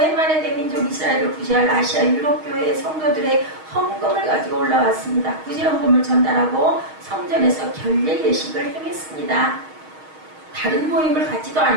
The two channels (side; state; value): left; late; 6.4 ms